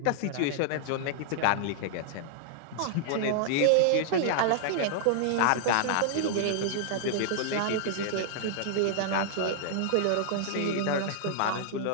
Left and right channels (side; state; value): both; different; correlation -0.01